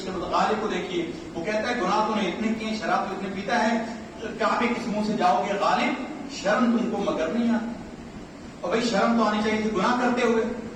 غالب کو دیکھیے، وہ کہتا ہے گناہ تو نے اتنے کیے، شراب تو اتنے پیتا ہے، کعبے کے منہ سے جاؤ گے غالب، شرم تم کو مگر نہیں آتی۔ اور بھائی شرم تو آنی چاہیے تھی، گناہ کرتے ہوئے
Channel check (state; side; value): identical; both; correlation 1.00